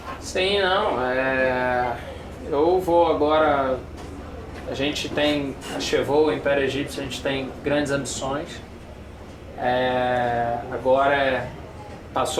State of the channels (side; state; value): both; identical; correlation 1.00